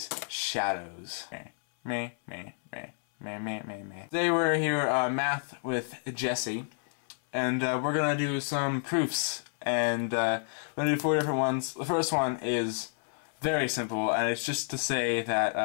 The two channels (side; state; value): right; silent; 58 dB below the other